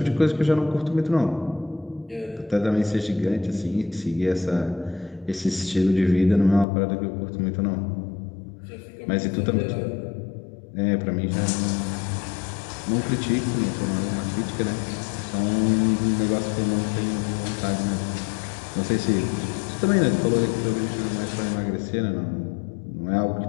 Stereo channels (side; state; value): right; drops out; at 6.7 s